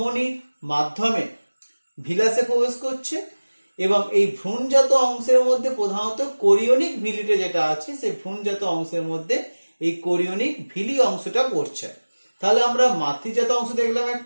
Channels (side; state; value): both; inverted; correlation -1.00